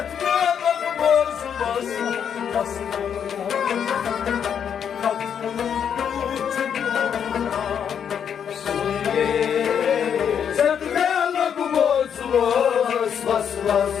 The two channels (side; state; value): right; quieter; 8.0 dB